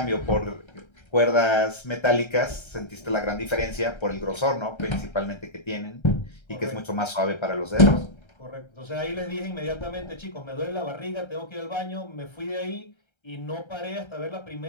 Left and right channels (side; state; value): right; late; 1.3 ms